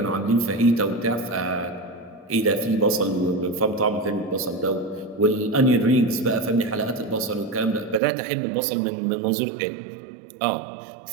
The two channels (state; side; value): drops out; left; at 8.0 s